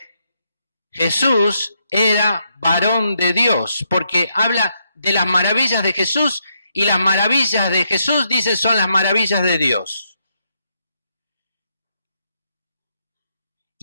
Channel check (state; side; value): inverted; both; correlation -0.79